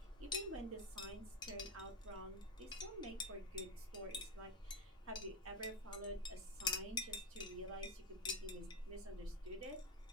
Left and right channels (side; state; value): both; normal; correlation 0.10